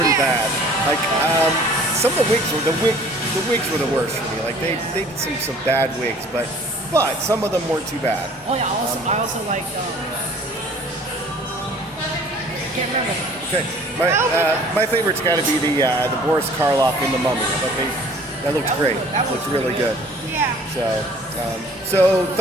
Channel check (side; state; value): both; normal; correlation 0.51